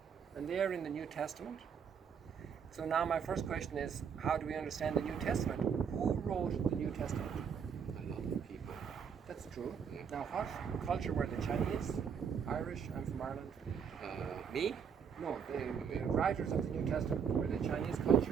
And they are in the New Testament. So now my first question is, how do we understand the New Testament? Who wrote the New Testament? A lot of people. That's true. Now what culture were the Chinese? Irish? I'm from Ireland. Me? No, the writers of the New Testament. Were they Chinese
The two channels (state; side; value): quieter; left; 6.9 dB